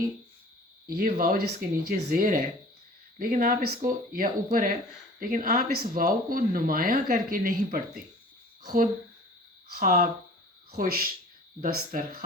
یہ واو جس کے نیچے زیر ہے، لیکن آپ اس کو، یا اوپر ہے، لیکن آپ اس واو کو نمایاں کر کے نہیں پڑھتے. خود، خواب، خوش،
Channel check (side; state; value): both; normal; correlation 0.45